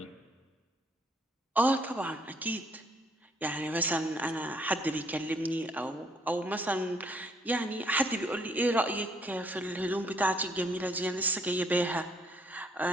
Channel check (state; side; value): normal; both; correlation 0.67